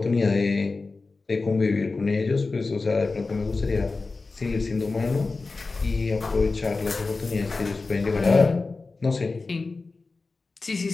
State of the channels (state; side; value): quieter; right; 3.8 dB